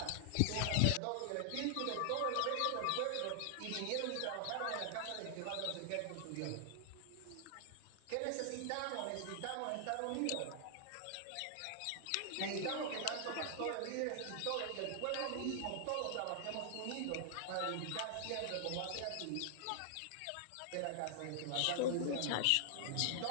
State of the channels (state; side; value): different; both; correlation 0.00